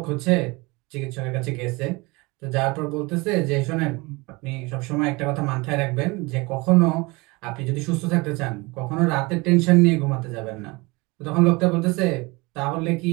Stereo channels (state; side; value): quieter; left; 24.9 dB